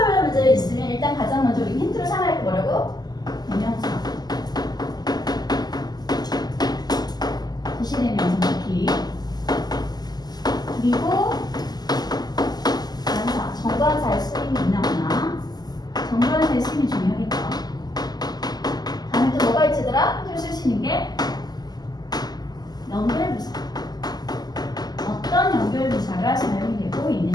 문제 있으면 일단 가장 먼저 우리 힌트로 삼아야 할 게 뭐라고? 대명사. 지시대명사 키. 그리고 관사, 정관사의 쓰임이 있나거나 정관사의 쓰임이 중요하겠죠. 다음에 또 뭐가 있지더라? 힌트로 쓸 수 있는 게 연결부사. 어떤 연결부사가 사용이 되고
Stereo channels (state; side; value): late; right; 0.20 ms